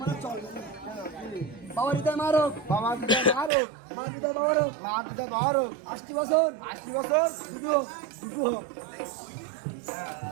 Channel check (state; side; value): drops out; left; at 3.5 s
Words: বাবা দিদা মারো বাবা দিদা মারো মা দিদা বাবারও মা দিদা বারো 80 বছর 80 বছর দুটো হোক